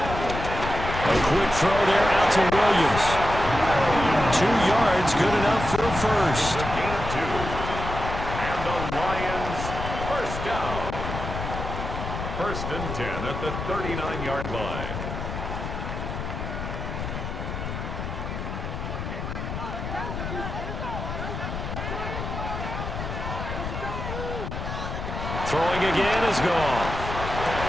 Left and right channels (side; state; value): left; noise; rumble, 5 dB below the sound